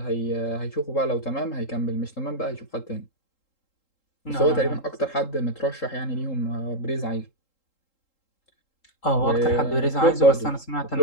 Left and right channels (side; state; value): right; late; 3.8 ms